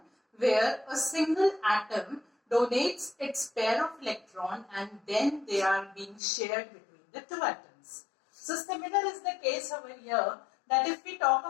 where a single atom donates its pair of electron and then they are being shared between the two atoms. So similar is the case over here, that if we talk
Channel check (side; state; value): right; drops out; at 6.2 s